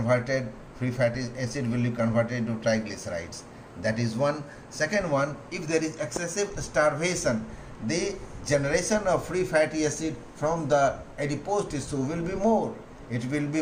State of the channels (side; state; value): both; identical; correlation 1.00